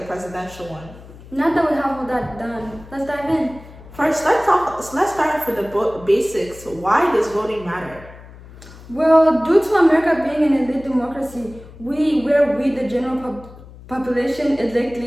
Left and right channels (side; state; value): left; noise; hum, 19 dB below the sound